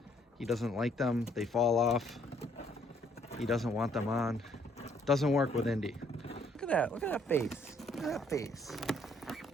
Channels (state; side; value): normal; both; correlation 0.65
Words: He doesn't like them. They fall off. He doesn't want them on. Doesn't work with Indy. Look at that. Look at that face. Look at that face.